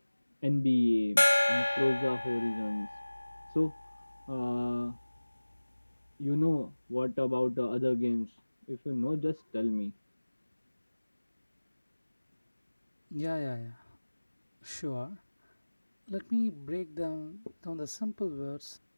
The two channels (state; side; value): inverted; both; correlation -1.00